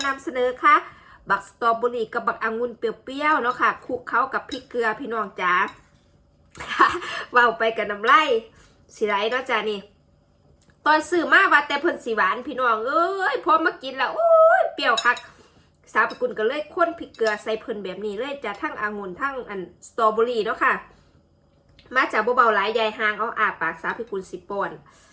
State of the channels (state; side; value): identical; both; correlation 1.00